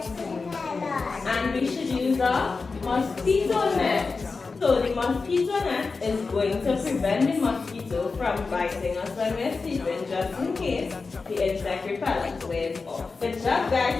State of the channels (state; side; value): quieter; right; 4.3 dB